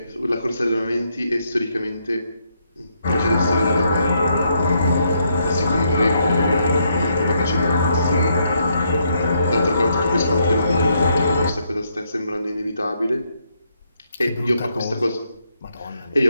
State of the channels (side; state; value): both; inverted; correlation -0.75